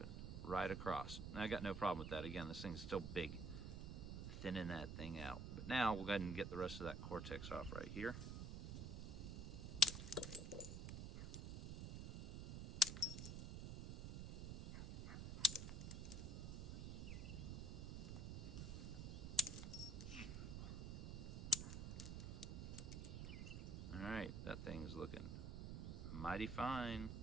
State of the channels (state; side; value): noise; right; rumble, 5 dB below the sound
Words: Right across. And I got no problem with that. Again, this thing's still big. Thinning that thing out. But now we'll go ahead and get the rest of that cortex off right here. Alright, that thing's looking mighty fine.